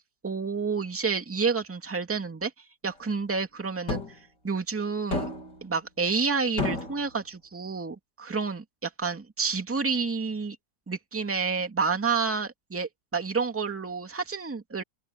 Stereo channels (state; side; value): quieter; left; 4.0 dB